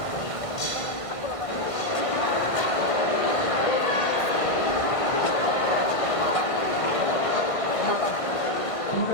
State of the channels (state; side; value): late; right; 1.5 ms